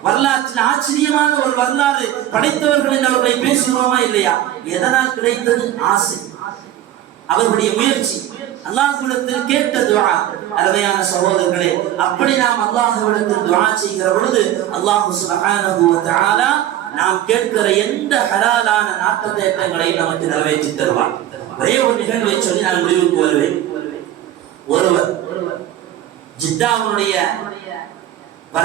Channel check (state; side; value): quieter; left; 12.5 dB